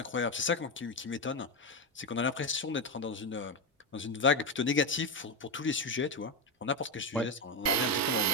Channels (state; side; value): normal; both; correlation 0.11